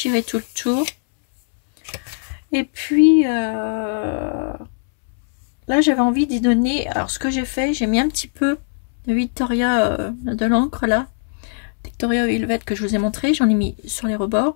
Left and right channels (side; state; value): right; silent; 66 dB below the other